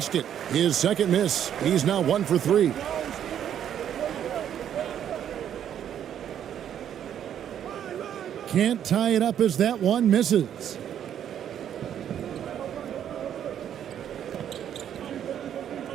His second miss. He's now 1 for 3. Can't tie it up as that one misses.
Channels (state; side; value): quieter; left; 9.7 dB